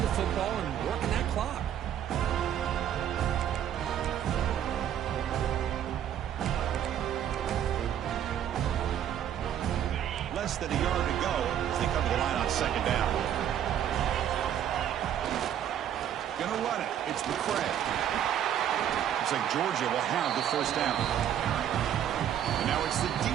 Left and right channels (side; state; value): left; quieter; 10.1 dB